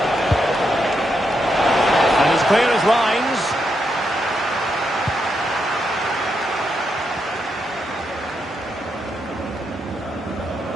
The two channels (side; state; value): both; normal; correlation 0.81